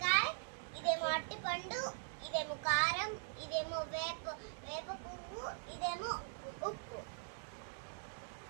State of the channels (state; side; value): silent; left; digital silence